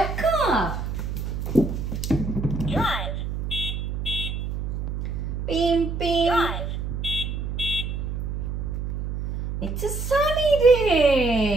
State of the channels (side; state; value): right; noise; hum, 4 dB below the sound